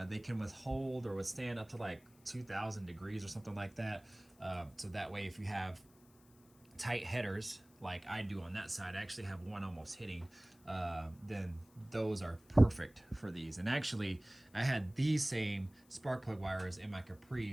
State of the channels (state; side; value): noise; left; hiss, 29 dB below the sound